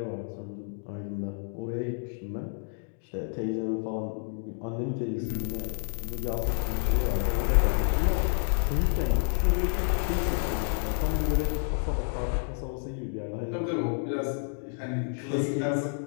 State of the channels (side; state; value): right; silent; 58 dB below the other